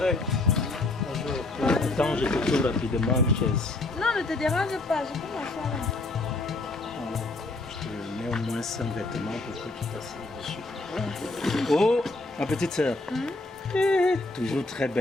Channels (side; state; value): right; quieter; 3.0 dB